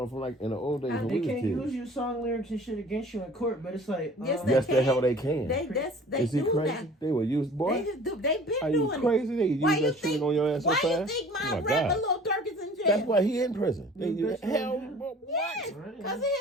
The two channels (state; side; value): normal; both; correlation 0.47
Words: from like in the old days when we was kids. They can't use your song lyrics and shit against you in court, but it's like yes, the hell they can. They Is he do crazy? that. They will use boy. They just do. They've been Are doing you crazy? They use that shit on your ass so fast. Why you think my rapper Lil Durk is in jail? That's why he in prison. Yes, because of